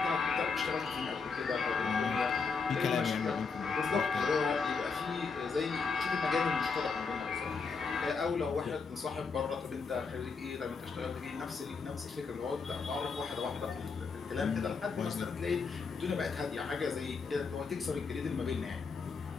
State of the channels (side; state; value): right; quieter; 5.0 dB